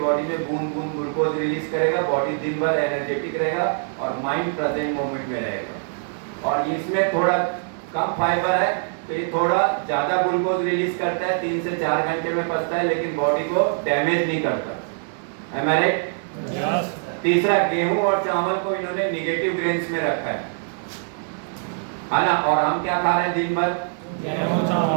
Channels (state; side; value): silent; left; digital silence